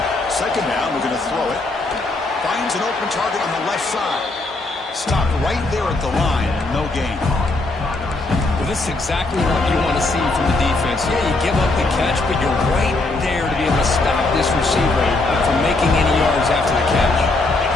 2nd down, we're going to throw it. Finds an open target on the left side. Stopped right there at the line. No gain. Well, this is exactly what you want to see from the defense. Yeah, you give up the catch, but you're right there to be able to stop this receiver from making any yards after the catch.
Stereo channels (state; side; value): quieter; right; 3.1 dB